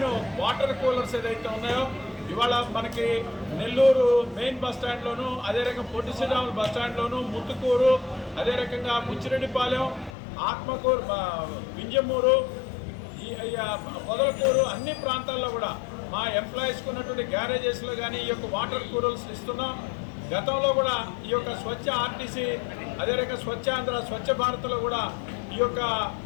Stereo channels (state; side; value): drops out; right; at 10.1 s